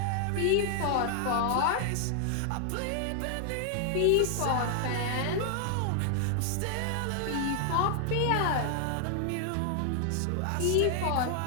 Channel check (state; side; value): different; both; correlation 0.00